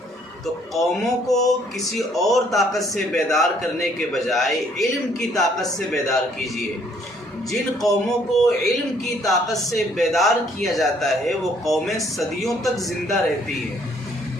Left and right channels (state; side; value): normal; both; correlation 0.64